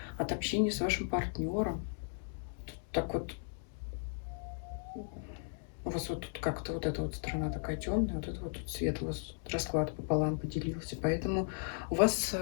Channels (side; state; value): right; silent; digital silence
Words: от общения с вашим партнером. Так вот, у вас вот тут как-то вот эта вот сторона такая темная, вот это вот тут свет, у вас расклад пополам поделился. Поэтому у вас